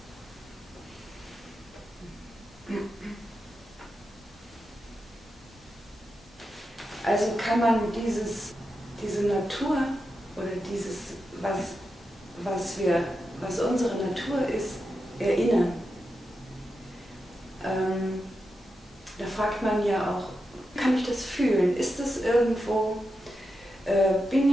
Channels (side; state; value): both; normal; correlation 0.88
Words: Also kann man diese Natur oder dieses, was unsere Natur ist, erinnern. Da fragt man ja auch, kann ich das fühlen? Ist das irgendwo,